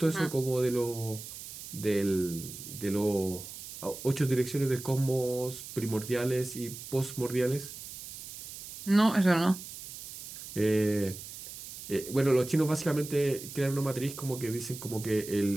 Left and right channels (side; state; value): right; noise; hiss, 12 dB below the sound